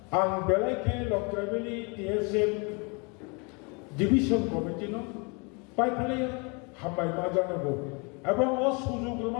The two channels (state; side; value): quieter; right; 32.0 dB